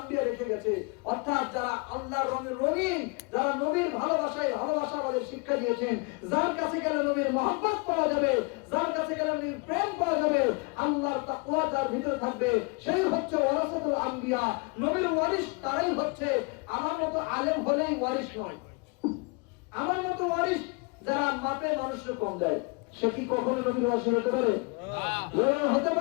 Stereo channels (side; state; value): right; quieter; 30.1 dB